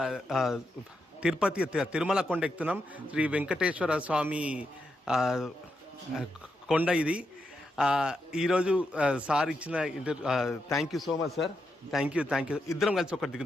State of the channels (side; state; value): both; normal; correlation 0.84